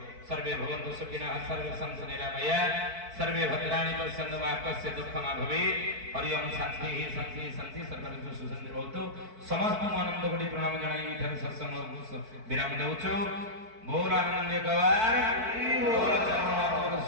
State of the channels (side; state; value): left; late; 4.5 ms